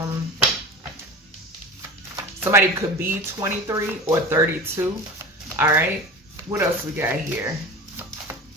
Somebody could be 23 or 32. All right. What else we got here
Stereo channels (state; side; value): normal; both; correlation 0.32